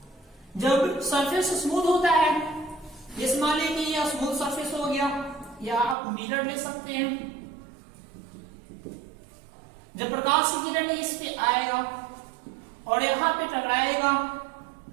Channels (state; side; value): drops out; left; at 6.0 s